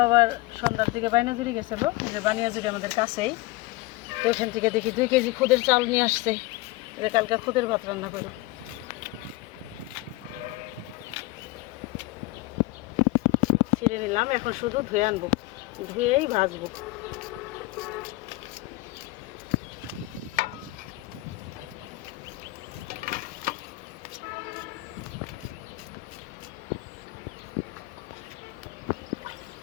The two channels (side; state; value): right; quieter; 20.3 dB